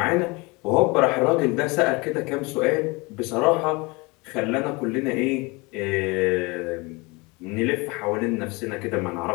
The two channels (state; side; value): quieter; right; 26.2 dB